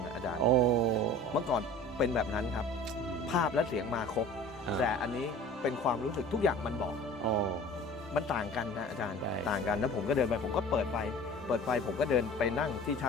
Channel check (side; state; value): both; normal; correlation 0.42